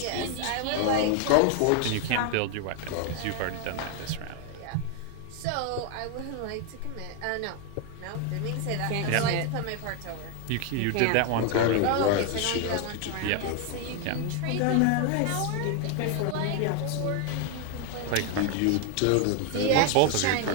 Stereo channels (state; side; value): different; both; correlation 0.01